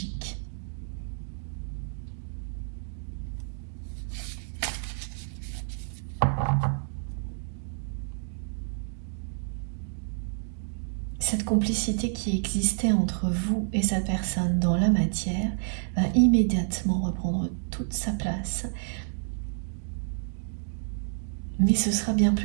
Cette complicité qui existait entre vous et cette personne dans la matière va immédiatement reprendre toute sa place. Mais ce sera bien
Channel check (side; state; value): left; silent; digital silence